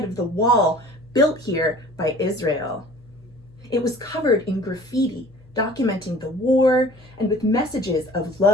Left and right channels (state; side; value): noise; left; hum, 26 dB below the sound